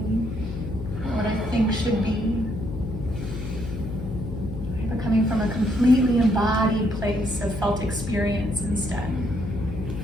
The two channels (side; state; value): left; noise; hum, 7 dB below the sound